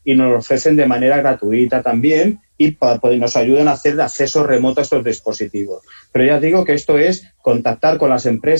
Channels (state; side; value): inverted; both; correlation -1.00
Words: y nos lo ofrecen de manera gratuita también y nos ayudan a hacer acceso remoto a estos dispositivos. Pero ya digo que esto es contactar con las